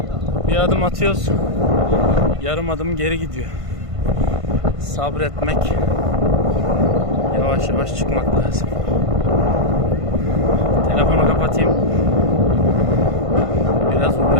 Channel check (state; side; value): late; left; 1.5 ms